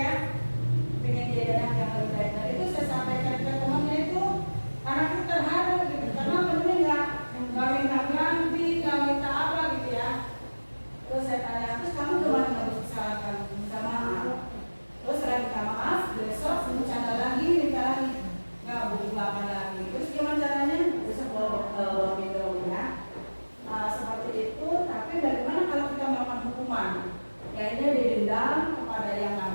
pengen jadi anak yang lebih baik. Dan itu saya sampaikan ke temannya itu, anak itu terharu gitu, karena temennya nggak minta ganti, nggak minta apa gitu ya. Terus saya tanya, terus kamu gimana harus kesalahan? Minta maaf. Terus saya minta maaf, besok bercanda lagi, minta lagi, nggak apa lagi. Terus gimana caranya? Besok bawa minum ya. Seperti itu, tapi bagaimana kalau kita melakukan hukuman? Ya ini didendam kepada yang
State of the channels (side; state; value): both; inverted; correlation -1.00